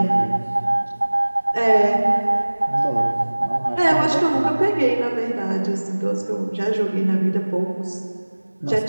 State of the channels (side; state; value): both; inverted; correlation -1.00